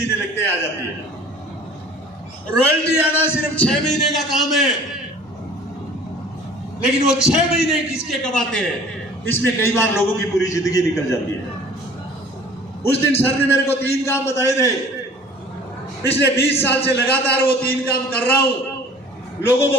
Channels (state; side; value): normal; both; correlation 0.48